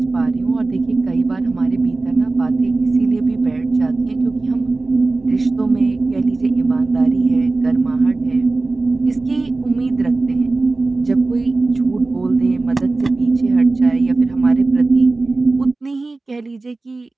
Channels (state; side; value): quieter; left; 3.4 dB